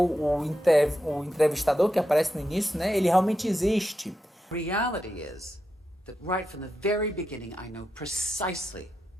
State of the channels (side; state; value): both; normal; correlation 0.87